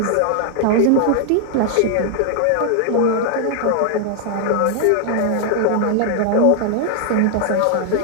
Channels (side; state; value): both; different; correlation 0.00